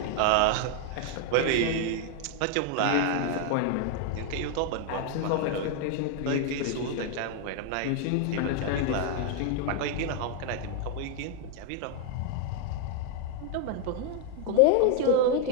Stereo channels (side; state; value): both; different; correlation 0.00